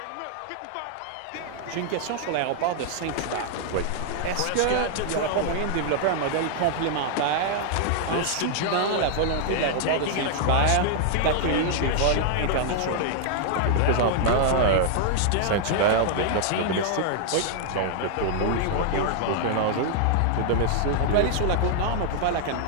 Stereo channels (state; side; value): different; both; correlation -0.01